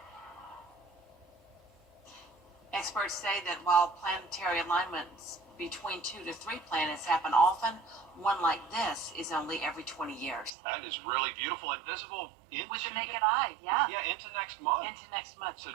Experts say that while planetary alignments between 2 to 3 planets happen often, one like this is only every 20 years. That is really beautiful and visible into With the naked eye, yeah. Yeah, into next month. Into next month. So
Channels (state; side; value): drops out; left; at 10.5 s